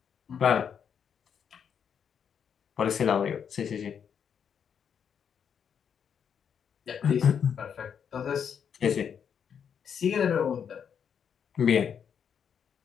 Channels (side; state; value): right; quieter; 7.6 dB